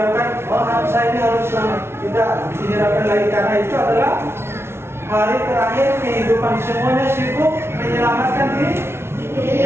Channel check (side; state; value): left; late; 0.12 ms